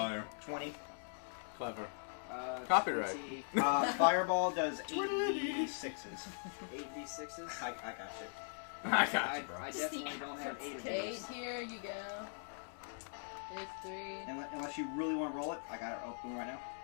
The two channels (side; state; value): right; silent; digital silence